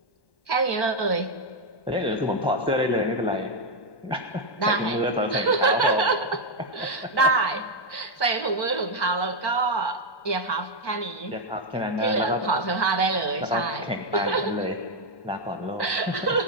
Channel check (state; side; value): late; right; 1.1 ms